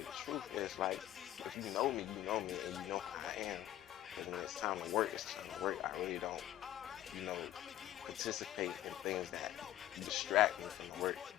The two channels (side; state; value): right; quieter; 13.2 dB